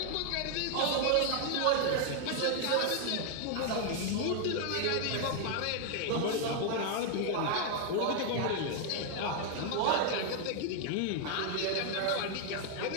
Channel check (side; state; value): both; different; correlation 0.00